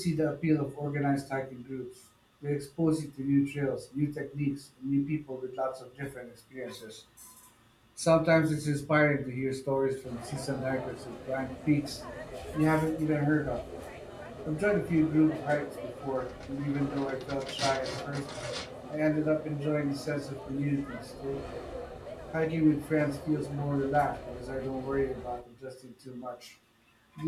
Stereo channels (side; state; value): both; identical; correlation 1.00